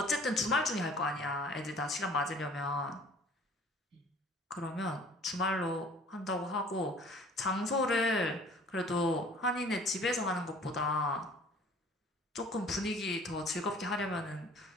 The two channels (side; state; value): both; normal; correlation 0.51